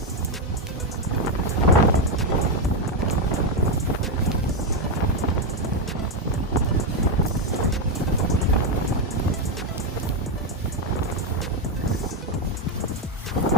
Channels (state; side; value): normal; both; correlation 0.05